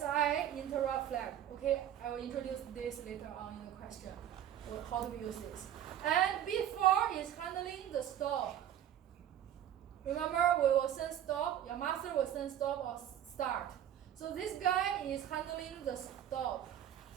interrupt flag. Okay, I will introduce this later on in the question, how do we use this. And bit 4 is handling the stop. Remember, we will send stop. Your master will send stop or start. So this guy is handling the stop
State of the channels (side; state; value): left; quieter; 10.8 dB